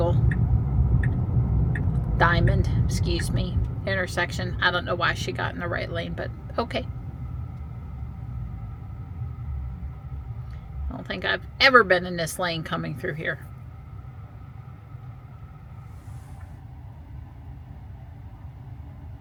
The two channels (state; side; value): identical; both; correlation 1.00